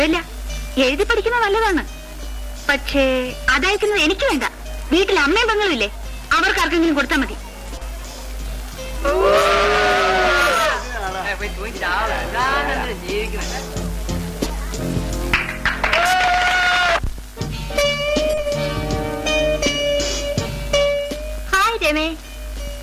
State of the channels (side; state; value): both; identical; correlation 1.00